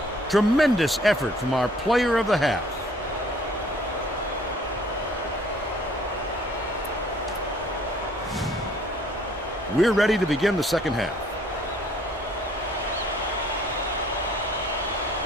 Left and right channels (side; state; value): both; normal; correlation 0.58